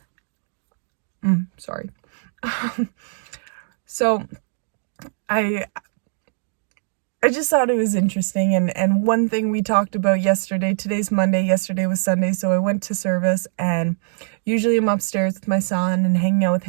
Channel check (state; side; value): silent; left; digital silence